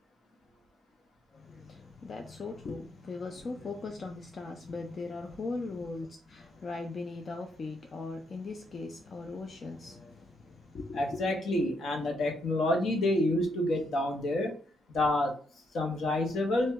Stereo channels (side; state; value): both; normal; correlation 0.76